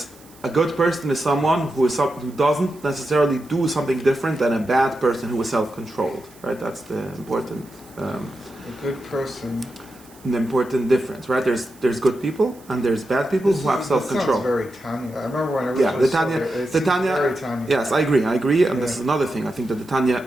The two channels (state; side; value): noise; right; hiss, 25 dB below the sound